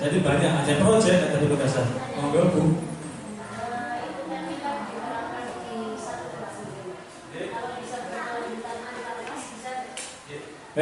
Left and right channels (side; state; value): both; identical; correlation 1.00